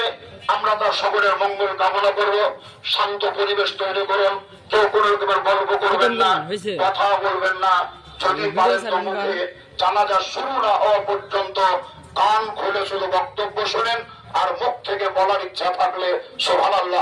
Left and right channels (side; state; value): both; identical; correlation 1.00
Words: আমরা তার সকলের মঙ্গল কামনা করব। শান্ত পরিবেশ তৈরি করুন, কেউ কোনো রকমের গল্প করবেন না, কথা বলবেন না। যদি পারেন তো মুখে জানাজা শুরু না হওয়া পর্যন্ত কান খুলে শুধু বক্তব্য শোনেন, আর মুখ থেকে বলার ইচ্ছা থাকলে সুবহানাল্লাহ